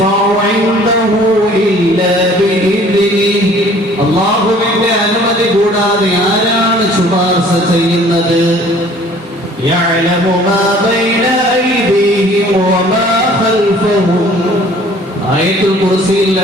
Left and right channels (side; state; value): both; normal; correlation 0.53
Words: ഇൻദഹു ഇല്ലാ ബിഇദ്നിഹി. അല്ലാഹുവിന്റെ അനുമതി കൂടാതെ ആരാണ് ശുപാർശ ചെയ്യുന്നത്? യഅലമു മാ ബൈന ഐദീഹിം വമാ ഖൽഫഹും. ആയത്തുൽ കുർസിയിൽ